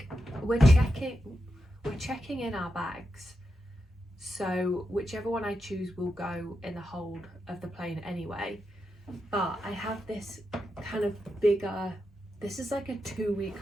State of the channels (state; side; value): normal; both; correlation 0.87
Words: we're checking in our bags, so whichever one I choose will go in the hold of the plane anyway. But I have this kind of bigger, this is like a 2-week